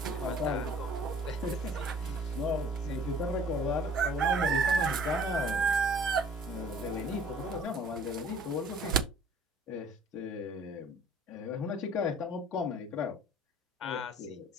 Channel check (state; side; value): normal; both; correlation 0.52